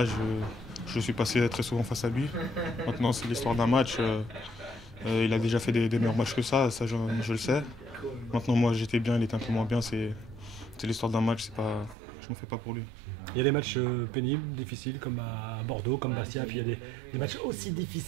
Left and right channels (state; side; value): drops out; left; at 12.0 s